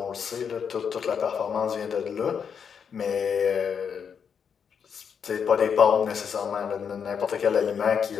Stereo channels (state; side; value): quieter; right; 7.0 dB